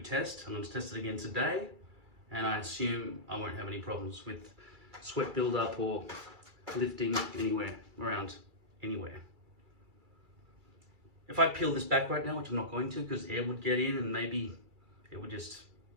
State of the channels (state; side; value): late; left; 2.3 ms